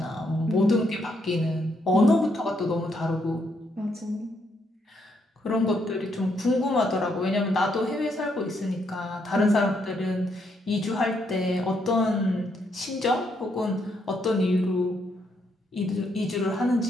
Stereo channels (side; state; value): both; normal; correlation 0.75